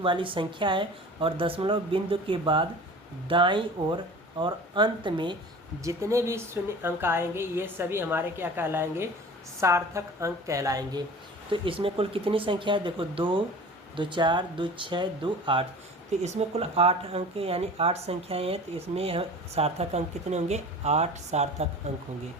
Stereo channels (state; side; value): normal; both; correlation 0.40